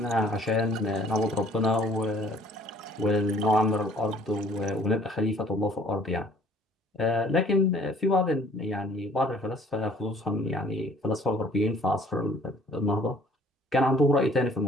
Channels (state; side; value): normal; both; correlation 0.56